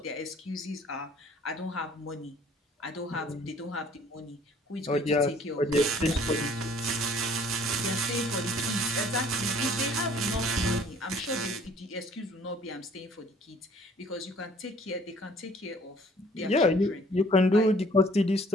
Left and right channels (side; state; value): both; normal; correlation 0.56